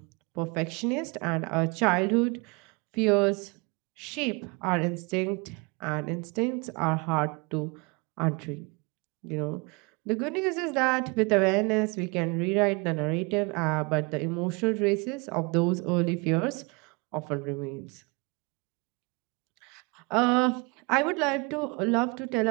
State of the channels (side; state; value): left; quieter; 29.0 dB